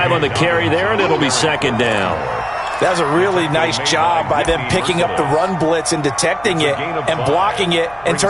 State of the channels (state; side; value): noise; right; hum, 24 dB below the sound